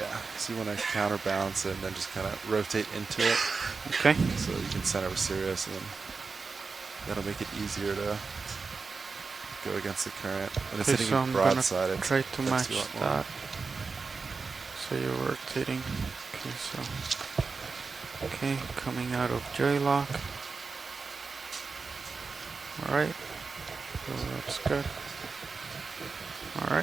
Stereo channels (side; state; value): left; quieter; 4.6 dB